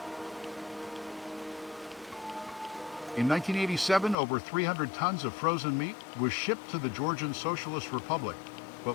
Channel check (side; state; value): right; drops out; at 4.2 s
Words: In 1987, over 300 tons of frozen meat was shipped to the Georgian Socialist Republic,